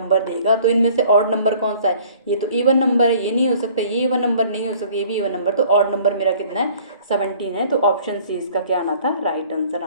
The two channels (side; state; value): both; inverted; correlation -0.53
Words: देगा। तो इनमें से ऑड नंबर कौन सा है? ये तो इवन नंबर है, ये नहीं हो सकता, ये इवन नंबर नहीं हो सकता, ये भी इवन नंबर। तो ऑड नंबर मेरा कितना है? 17 है। तो ऑप्शन सी इसका क्या आना था? राइट आंसर